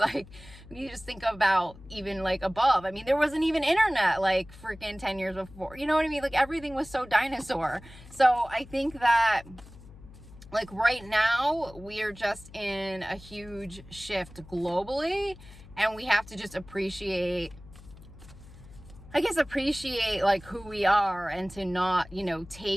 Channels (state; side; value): noise; left; hum, 19 dB below the sound